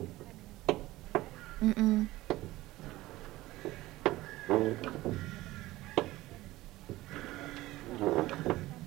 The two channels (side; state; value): left; quieter; 17.8 dB